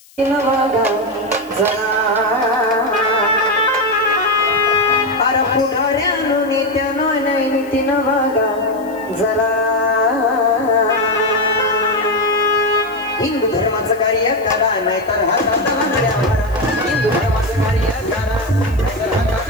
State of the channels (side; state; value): left; noise; hiss, 27 dB below the sound